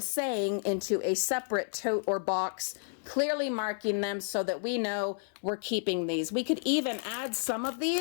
saying, into a separate tote or box, clearly marking them so that we know we're keeping these. We could even add some of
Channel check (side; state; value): right; silent; 57 dB below the other